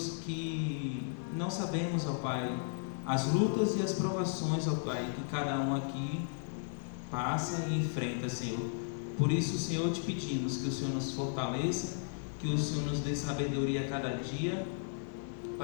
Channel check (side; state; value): right; silent; digital silence